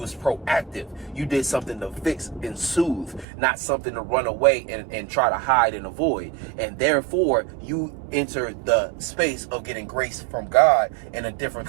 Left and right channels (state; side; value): drops out; left; at 3.2 s